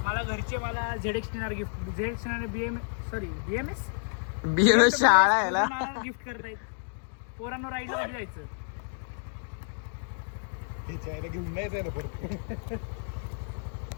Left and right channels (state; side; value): silent; right; digital silence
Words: मला घरचे मला ZX गिफ्ट BMS शाळा आहे ना. गिफ्ट करतायत. पोरांनो राईडला कधी जायचं? घेऊन नाही जायला परत.